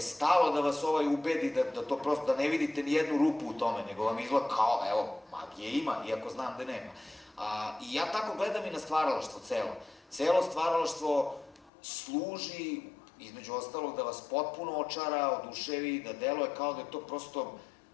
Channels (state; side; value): drops out; right; at 11.7 s